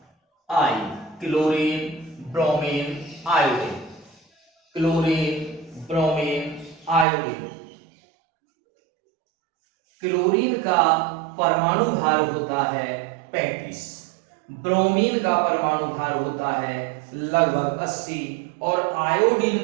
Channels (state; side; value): drops out; left; at 7.1 s